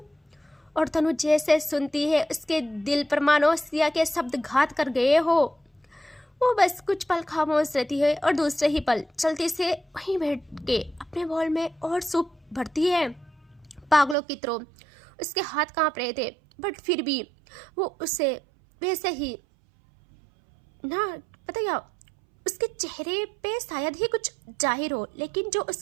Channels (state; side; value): drops out; left; at 14.2 s